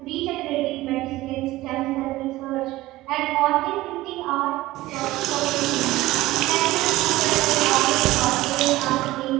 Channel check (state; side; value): quieter; left; 17.6 dB